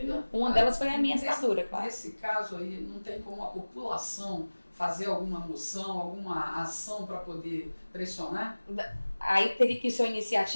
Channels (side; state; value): both; inverted; correlation -1.00